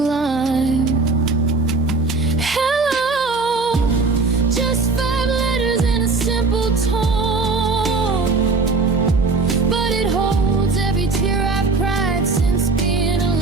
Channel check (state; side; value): quieter; left; 3.9 dB